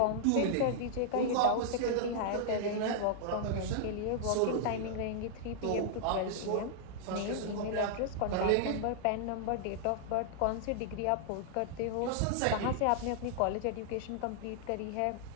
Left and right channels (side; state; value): both; different; correlation -0.01